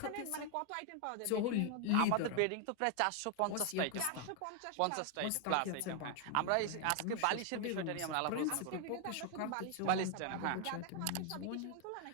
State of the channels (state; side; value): different; both; correlation 0.00